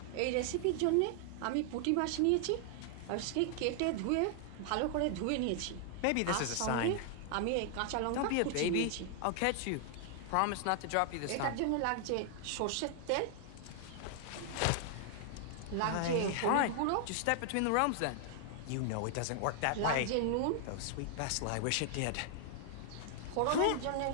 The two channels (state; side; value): different; both; correlation 0.00